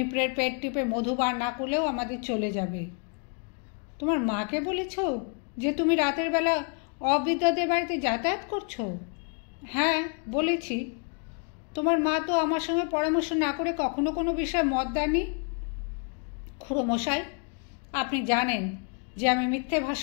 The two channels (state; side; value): quieter; right; 38.7 dB